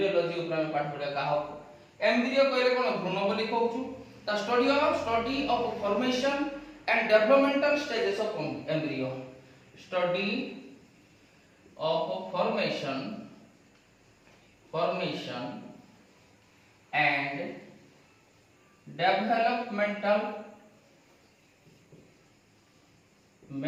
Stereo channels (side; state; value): both; identical; correlation 1.00